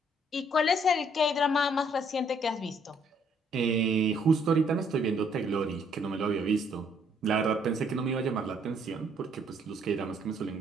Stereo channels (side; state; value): both; normal; correlation 0.66